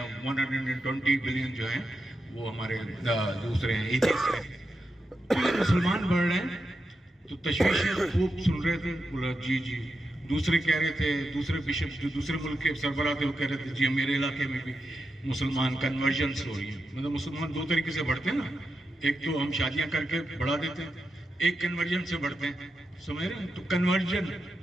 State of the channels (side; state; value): both; normal; correlation 0.88